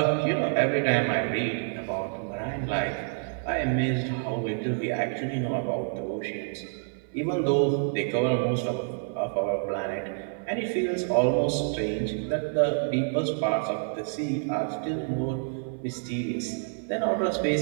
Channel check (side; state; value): left; silent; 59 dB below the other